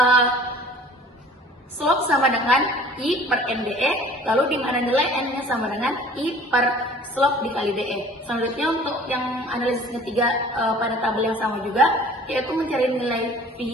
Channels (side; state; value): both; normal; correlation 0.48